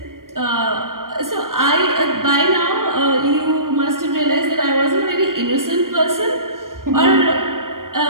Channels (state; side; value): late; left; 0.91 ms